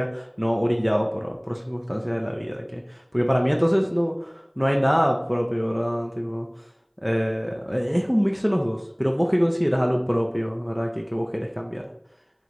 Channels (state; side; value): identical; both; correlation 1.00